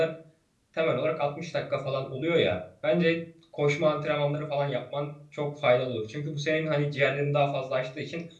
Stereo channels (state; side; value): identical; both; correlation 1.00